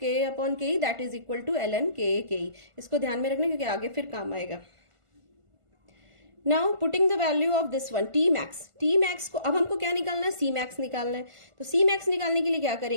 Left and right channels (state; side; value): late; left; 1.5 ms